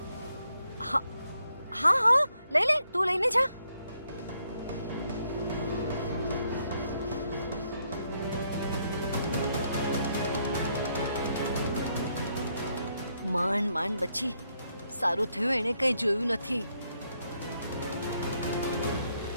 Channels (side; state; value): both; inverted; correlation -0.76